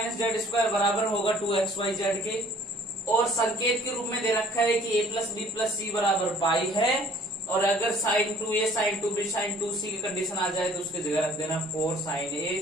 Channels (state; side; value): normal; both; correlation 0.55